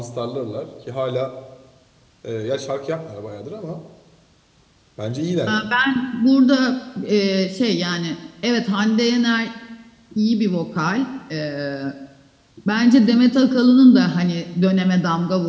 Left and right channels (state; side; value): identical; both; correlation 1.00